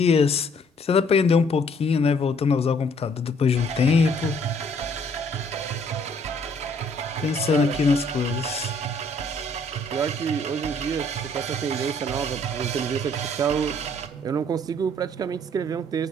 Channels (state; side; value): normal; both; correlation 0.63